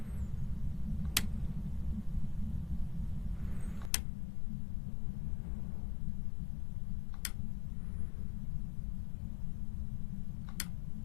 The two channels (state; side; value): drops out; right; at 3.9 s